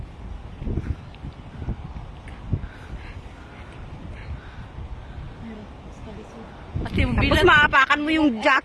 At yung Tapos bilang. maapakan mo yung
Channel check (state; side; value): identical; both; correlation 1.00